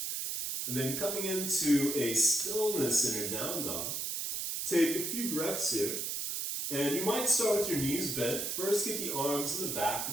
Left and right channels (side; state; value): right; noise; hiss, 2 dB below the sound